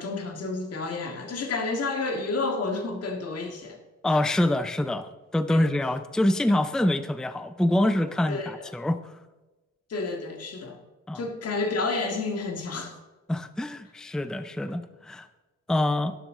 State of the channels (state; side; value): normal; both; correlation 0.75